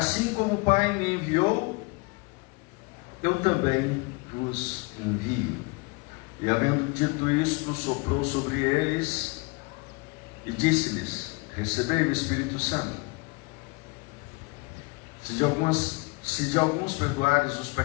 como o Pai me enviou, eu também vos envio. E havendo dito isto, soprou sobre eles e disse-lhes: recebei o Espírito Santo. Se de alguns perdoares os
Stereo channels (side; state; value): right; quieter; 28.0 dB